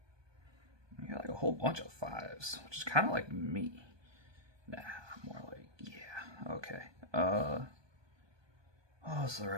I got like a whole bunch of fives, which is kind of like me. Nah, more like, yeah, okay. What's the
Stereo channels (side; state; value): left; late; 1.2 ms